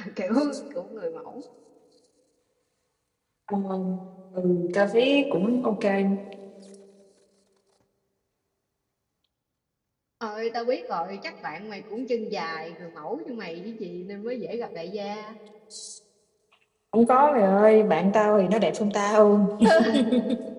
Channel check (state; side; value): identical; both; correlation 1.00